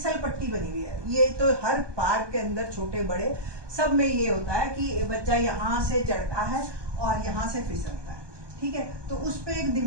पट्टी बनी हुई है। ये तो हर पार्क के अंदर छोटे बड़े सब में ये होता है कि बच्चा यहाँ से चढ़ता है और यहाँ से फिसलता है। ठीक है, तो उस पे एक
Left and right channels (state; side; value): late; left; 1.2 ms